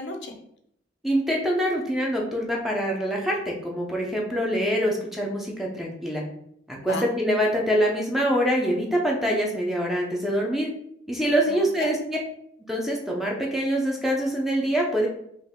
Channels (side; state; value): both; normal; correlation 0.65